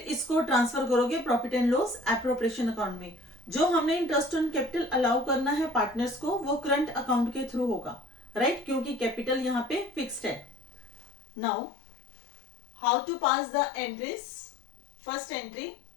इसको transfer करोगे profit and loss appropriation account में. जो हमने इंटरेस्ट ऑन कैपिटल अलाउ करना है पार्टनर्स को वो करंट अकाउंट के थ्रू होगा, राइट, क्योंकि कैपिटल यहाँ पे फिक्स्ड है. Now how to pass the entries. First entry,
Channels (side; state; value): right; drops out; at 11.2 s